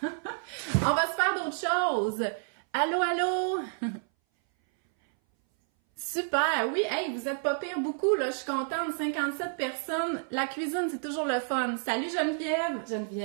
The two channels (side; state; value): left; silent; 58 dB below the other